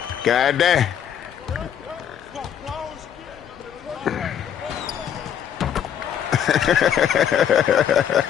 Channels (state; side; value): quieter; right; 9.2 dB